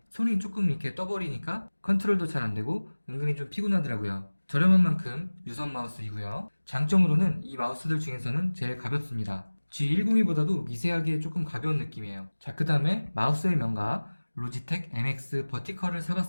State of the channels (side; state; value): both; inverted; correlation -1.00